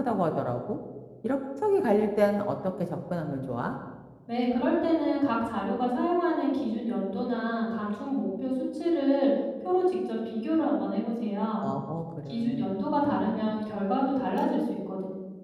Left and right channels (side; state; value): both; identical; correlation 1.00